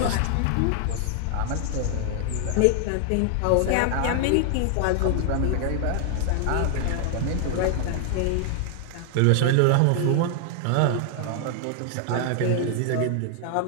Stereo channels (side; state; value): both; different; correlation 0.00